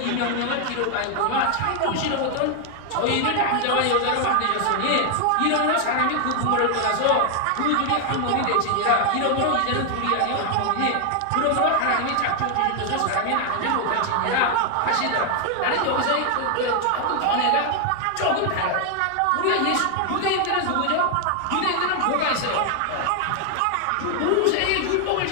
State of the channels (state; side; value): different; both; correlation 0.00